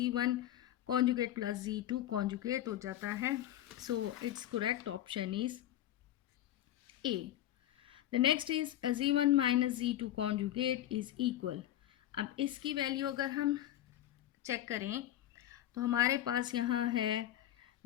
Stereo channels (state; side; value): quieter; right; 12.8 dB